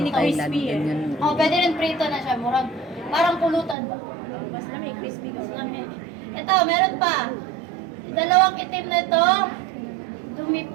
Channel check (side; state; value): left; drops out; at 3.8 s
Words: Ganyan. Oh, pwede rin prito na siya. Murag, parang pulutan ba? Mas lamig, crispy Mas kasi. lamig. Ito, meron pa. Dalawang itim na ito, dumi